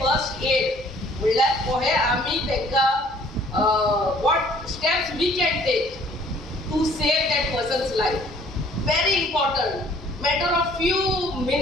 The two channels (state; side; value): normal; both; correlation 0.57